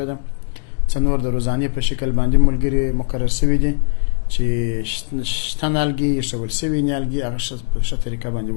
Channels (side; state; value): right; silent; 66 dB below the other